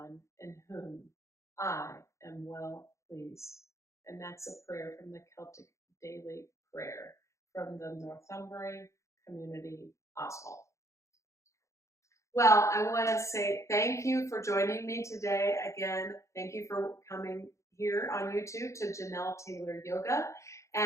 in whom I am well pleased. And that's a prayer from the Celtic Daily Prayer from the Northumberland Community Oswald. Well, I want to say thank you for joining me today. Again, thank you for coming here on YouTube to Janelle Taylor Yoga.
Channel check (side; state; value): right; late; 0.14 ms